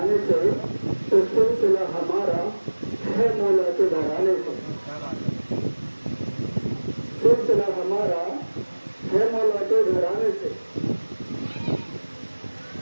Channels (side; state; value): both; inverted; correlation -1.00